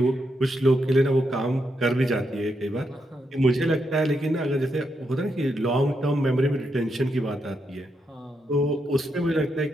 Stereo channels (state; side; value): normal; both; correlation 0.82